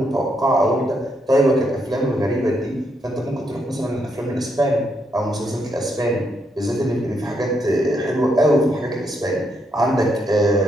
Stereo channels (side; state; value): both; normal; correlation 0.77